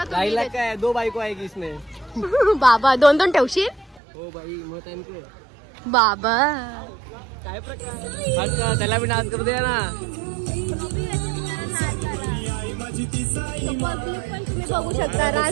2.5 लाख का है 2 बाइको आएगी इसमें बाबा 2 ठेवशील हो भाई मत आहे बाबा काय प्रकार त्याला भी डान्स करू दे ना पण तुम्ही बघू शकता. रास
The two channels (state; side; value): drops out; left; at 4.0 s